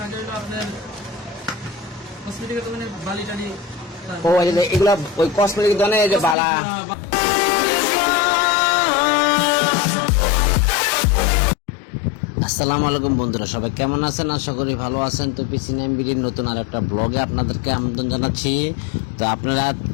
লাগে হলো আপনার কসমেটিকের দোকানে বালি টালি। ও এগুলো ওই কসমেটিক দোকানে যে বালা। আসসালামু আলাইকুম বন্ধুরা, সবাই কেমন আছেন? আশা করি ভালো আছেন। তো পিসিনাম বিডির নতুন আর একটা ব্লগে আপনাদেরকে আমন্ত্রণ জানাচ্ছি। তো আপনারা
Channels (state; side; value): drops out; right; at 6.4 s